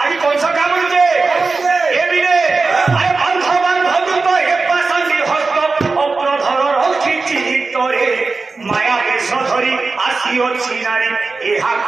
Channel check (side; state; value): left; quieter; 4.0 dB